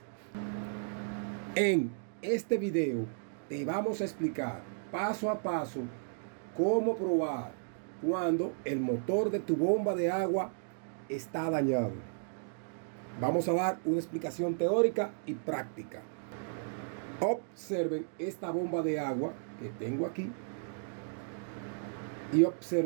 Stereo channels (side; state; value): left; silent; digital silence